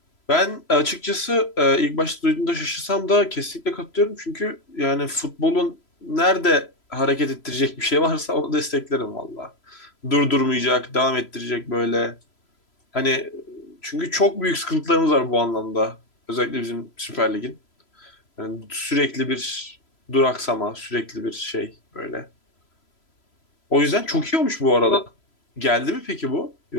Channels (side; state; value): right; late; 3.0 ms